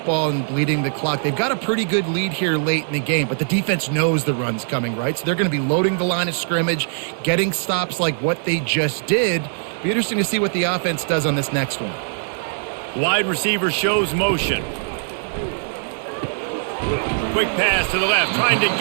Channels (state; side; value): silent; left; digital silence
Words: and bleeding the clock. They've got a pretty good lead here late in the game, but the defense knows the run's coming, right? So they're going to be loading the line of scrimmage, getting stops like what they just did. Be interesting to see what the offense does on this next one. Wide receiver shows motion. Quick pass to the left, trying to